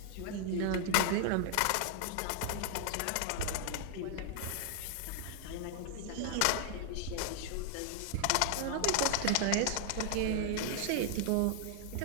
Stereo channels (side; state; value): both; different; correlation 0.00